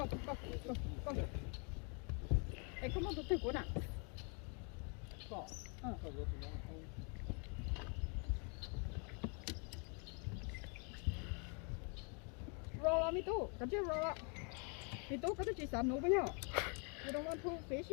Hey, come on, tụi cô nè. Roll me too. Come here, roll. Me too, có chỉ sản nụ với nhau. You don't want to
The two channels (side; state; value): right; quieter; 37.3 dB